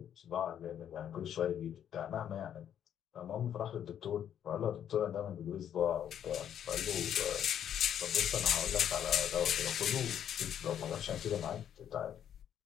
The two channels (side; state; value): right; quieter; 9.6 dB